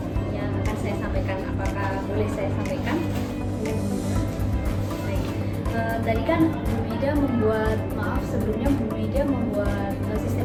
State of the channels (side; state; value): both; identical; correlation 1.00